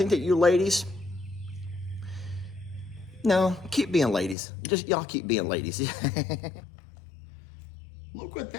that you ladies, no, keep being ladies. Just y'all keep being ladies. Look what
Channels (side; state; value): right; drops out; at 4.4 s